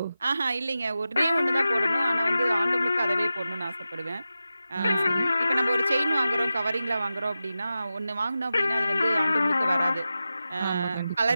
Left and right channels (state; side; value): inverted; both; correlation -0.92